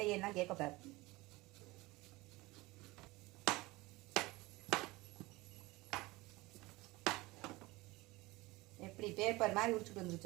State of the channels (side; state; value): left; quieter; 21.3 dB